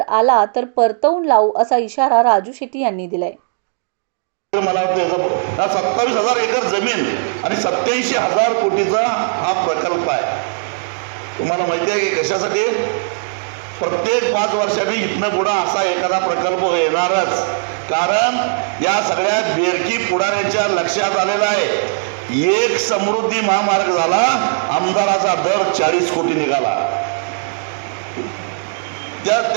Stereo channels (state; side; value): silent; left; digital silence